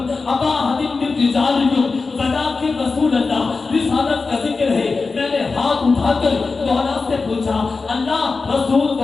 ابا احد من رجالکم ولکن رسول اللہ. رسالت کا ذکر ہے. میں نے ہاتھ اٹھا کر مولا سے پوچھا اللہ رسول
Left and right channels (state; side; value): quieter; right; 4.2 dB